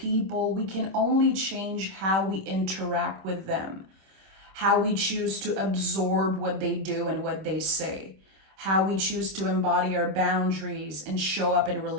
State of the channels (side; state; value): left; late; 26 ms